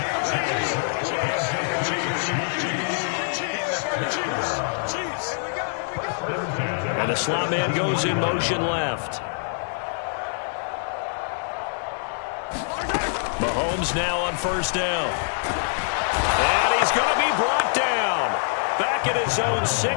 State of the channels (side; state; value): right; silent; digital silence